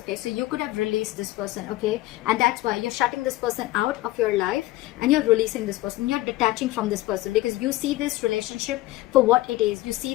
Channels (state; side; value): quieter; right; 17.5 dB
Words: so you could have released this person. Okay, and that's why you're shutting this person out of your life, and you're releasing this person. You're detaching from this person because you see this relationship for what it is. You